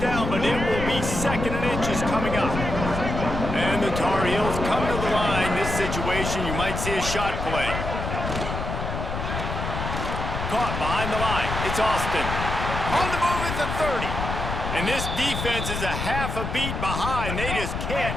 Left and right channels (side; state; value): left; noise; rumble, 4 dB below the sound